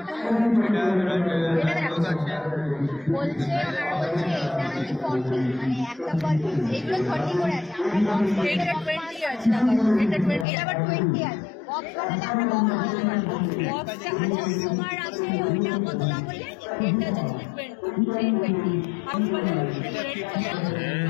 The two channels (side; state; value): right; drops out; at 10.5 s